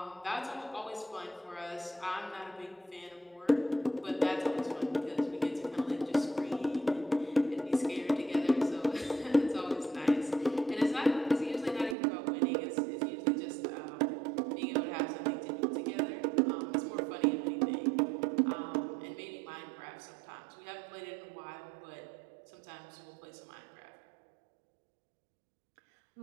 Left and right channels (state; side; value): drops out; left; at 12.0 s